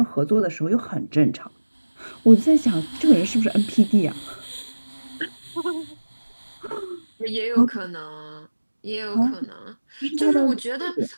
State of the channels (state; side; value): inverted; both; correlation -1.00